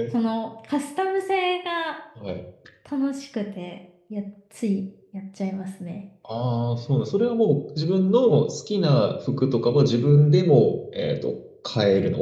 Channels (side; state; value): both; identical; correlation 1.00